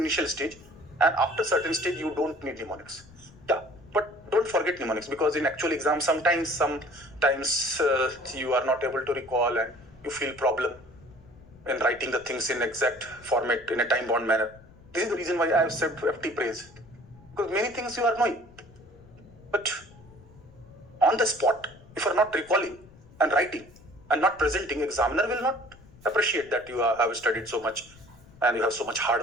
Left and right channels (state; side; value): noise; left; rumble, 23 dB below the sound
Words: stage, and after certain stage, you don't need mnemonics. Yeah, but don't forget mnemonics, because in actual exam, sometimes you are not able to recall and you feel problem in writing the things in exact format in a time-bound manner. This is the reason why I have said FT praise, because many things you are knowing, but on the spot, if you are not recalling and writing, and not presenting, examiner will not appreciate that you have studied so much and you have so much